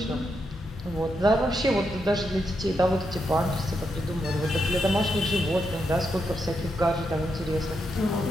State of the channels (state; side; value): normal; both; correlation 0.82